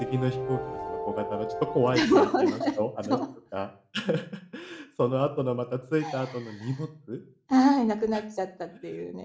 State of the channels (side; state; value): both; identical; correlation 1.00